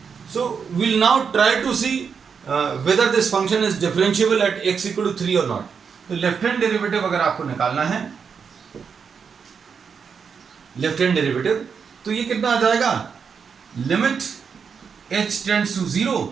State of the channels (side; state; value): left; quieter; 6.3 dB